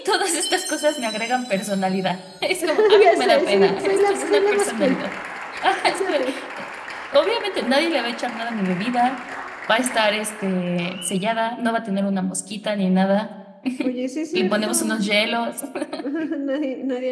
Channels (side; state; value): both; identical; correlation 1.00